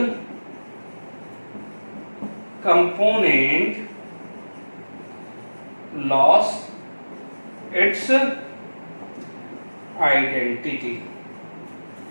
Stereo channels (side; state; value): both; inverted; correlation -1.00